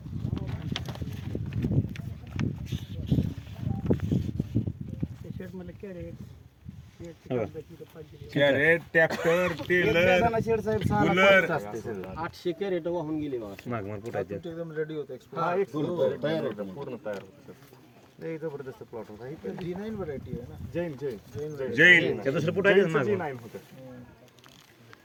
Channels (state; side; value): identical; both; correlation 1.00